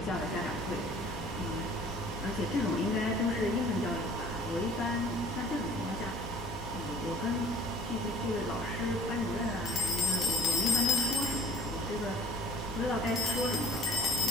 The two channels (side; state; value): both; normal; correlation 0.50